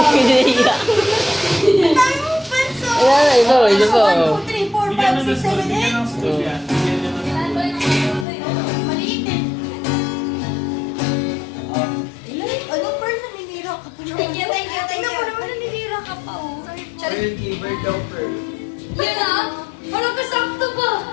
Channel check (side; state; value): right; drops out; at 8.2 s